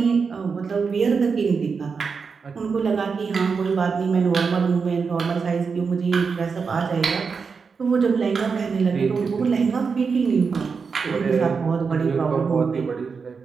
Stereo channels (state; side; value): quieter; left; 5.3 dB